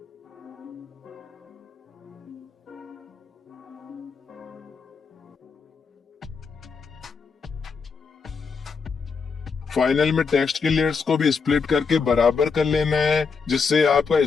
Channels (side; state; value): right; quieter; 5.3 dB